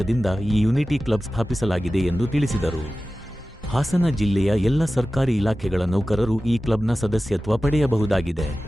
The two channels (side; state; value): both; normal; correlation 0.95